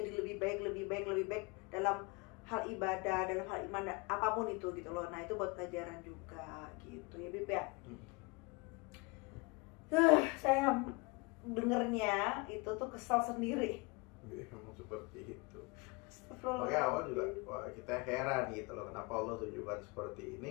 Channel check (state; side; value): quieter; right; 27.8 dB